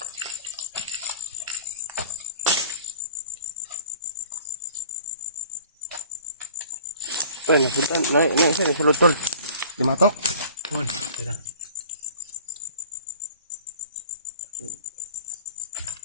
Ay, napunta. Sa lutol. Limatok. Tira.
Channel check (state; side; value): inverted; both; correlation -0.46